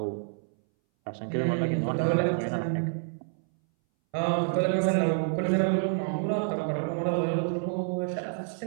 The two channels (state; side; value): silent; left; 59 dB below the other